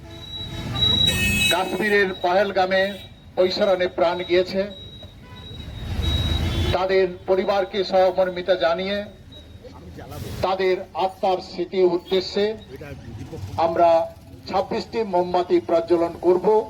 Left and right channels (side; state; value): both; identical; correlation 1.00